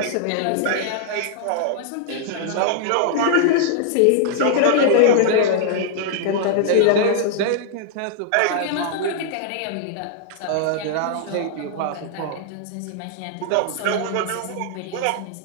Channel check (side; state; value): both; different; correlation -0.01